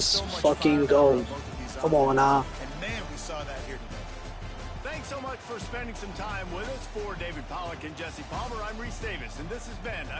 fucking go. Come on now. Thanks so much for spending some time with us. For David Pollack and Jesse Palmer, I'm Reese Davis, and this has been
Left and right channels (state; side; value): identical; both; correlation 1.00